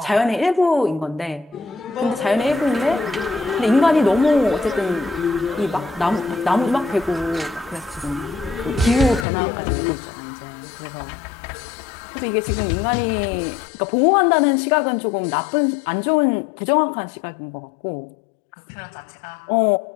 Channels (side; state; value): right; drops out; at 9.2 s